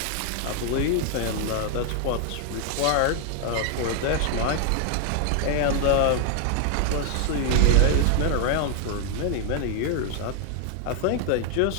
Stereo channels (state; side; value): different; both; correlation 0.00